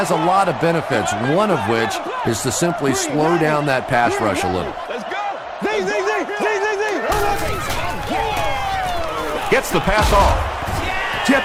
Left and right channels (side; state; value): both; identical; correlation 1.00